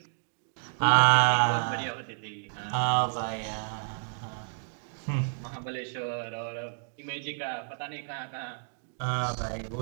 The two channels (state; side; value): silent; left; digital silence